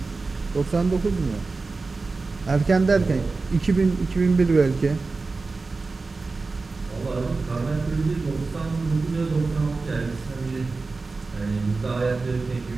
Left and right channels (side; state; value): left; quieter; 3.9 dB